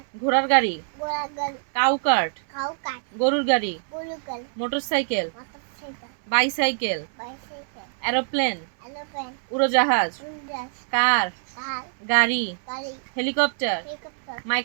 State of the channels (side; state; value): left; silent; 62 dB below the other